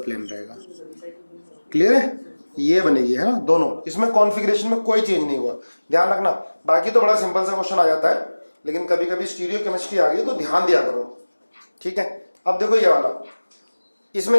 प्लेन रहेगा। क्लियर है, ये बनेगी, है ना दोनों। इसमें कॉन्फ़िगरेशन में कोई चेंज नहीं हुआ, ध्यान रखना। बाकी तो बड़ा सिंपल सा क्वेश्चन आ जाता है, लेकिन कभी कभी स्टीरियो केमिस्ट्री आ गई तो ध्यान दिया करो। ठीक है, अब देखो ये वाला, इसमें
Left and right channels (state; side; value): inverted; both; correlation -1.00